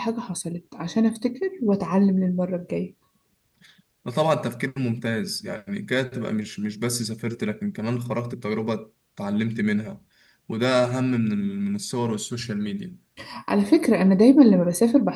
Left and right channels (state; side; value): identical; both; correlation 1.00